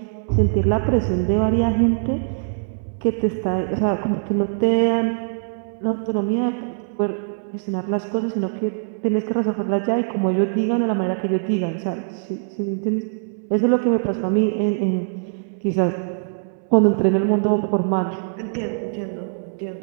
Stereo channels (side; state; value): left; silent; 64 dB below the other